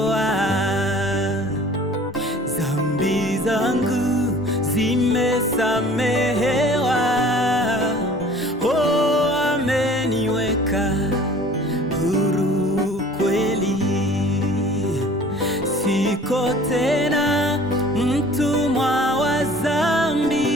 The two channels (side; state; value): both; normal; correlation 0.49